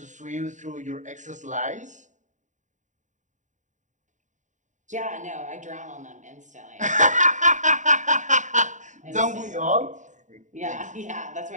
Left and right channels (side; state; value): left; late; 0.36 ms